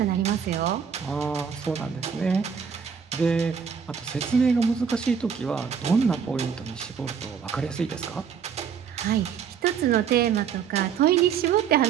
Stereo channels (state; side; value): quieter; left; 7.0 dB